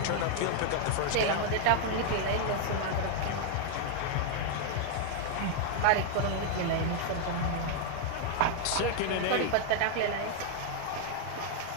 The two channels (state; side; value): different; both; correlation 0.00